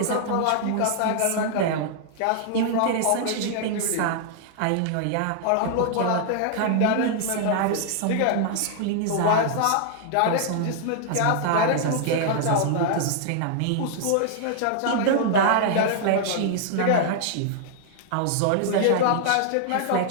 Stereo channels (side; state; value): both; different; correlation -0.01